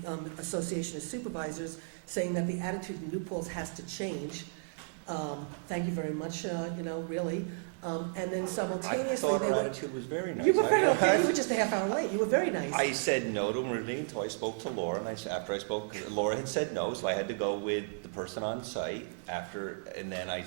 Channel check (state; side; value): silent; left; digital silence